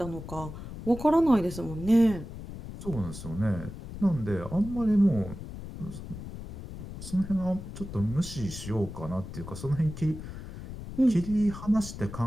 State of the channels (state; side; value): noise; left; rumble, 11 dB below the sound